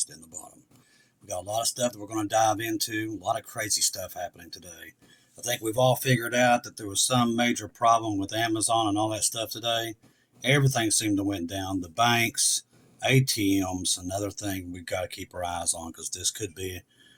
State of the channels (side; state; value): both; identical; correlation 1.00